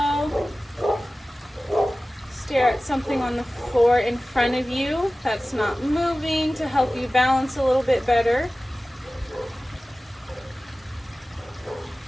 Stare at something on the floor in front of you that's not moving to help you balance a little bit better.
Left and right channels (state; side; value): normal; both; correlation 0.96